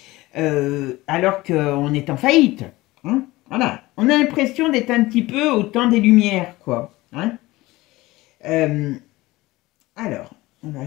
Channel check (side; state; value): right; quieter; 19.3 dB